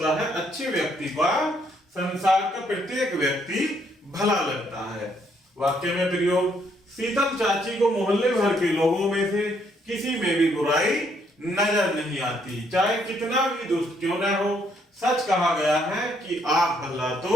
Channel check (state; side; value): normal; both; correlation 0.70